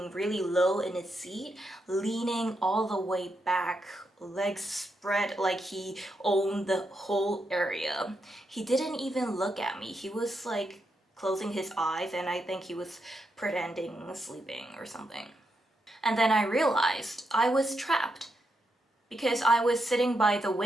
really low in his seat, leaning all the way back, legs spread like he owned the whole area. He didn't even look at me. He was like closing his eyes, and I think he was pretending sleeping or something. And then I realized I was trapped. Because I was sitting by the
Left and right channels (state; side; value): normal; both; correlation 0.83